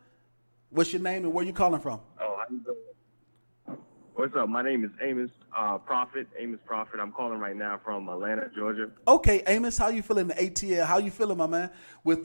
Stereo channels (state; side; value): inverted; both; correlation -1.00